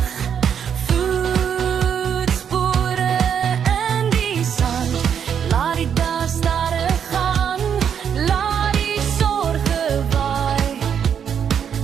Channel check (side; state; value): left; quieter; 8.0 dB